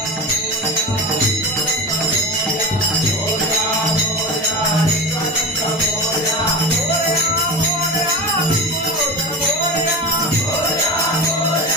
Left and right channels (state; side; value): normal; both; correlation 0.27